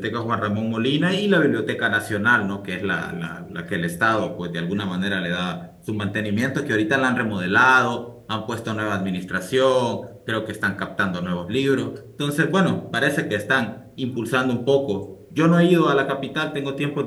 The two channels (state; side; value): identical; both; correlation 1.00